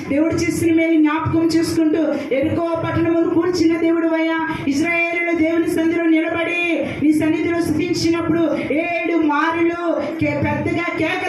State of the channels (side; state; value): both; identical; correlation 1.00